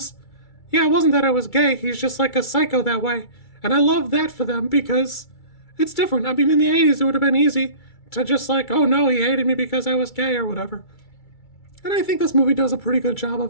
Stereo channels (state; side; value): late; right; 2.3 ms